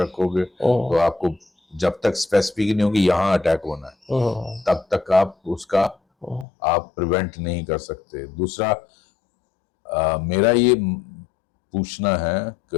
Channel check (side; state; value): right; drops out; at 6.5 s